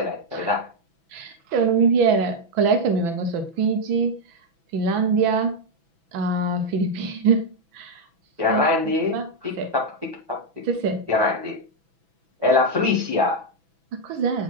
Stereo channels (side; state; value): left; late; 6.1 ms